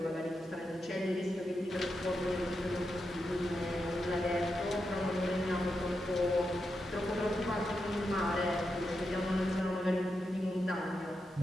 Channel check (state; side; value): normal; both; correlation 0.84